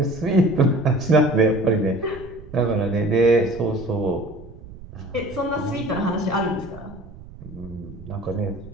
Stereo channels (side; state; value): right; noise; rumble, 17 dB below the sound